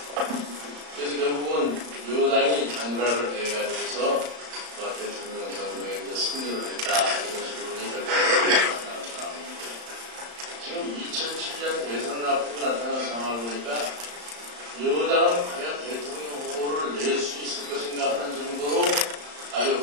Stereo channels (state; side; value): late; left; 34 ms